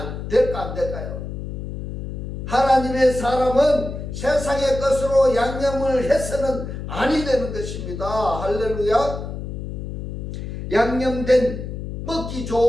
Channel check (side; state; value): left; noise; hum, 7 dB below the sound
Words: 될까 안 될까요? 하나님의 사람은 세상의 것으로 양념을 해서는 아니 되는 것입니다. 할렐루야. 양념된 먹기